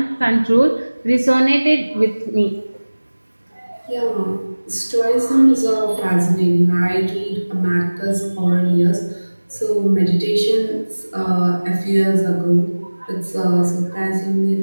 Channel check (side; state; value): both; inverted; correlation -1.00